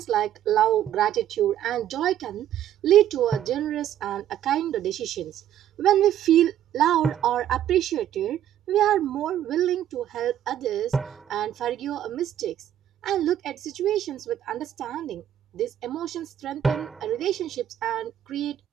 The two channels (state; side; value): quieter; left; 11.1 dB